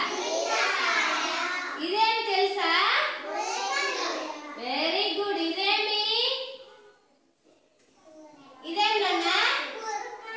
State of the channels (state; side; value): identical; both; correlation 1.00